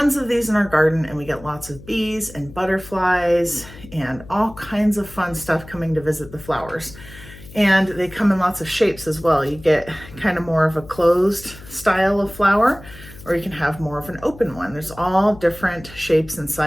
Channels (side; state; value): left; noise; hum, 18 dB below the sound